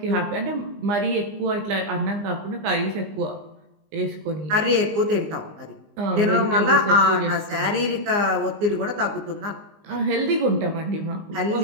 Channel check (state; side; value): late; left; 19 ms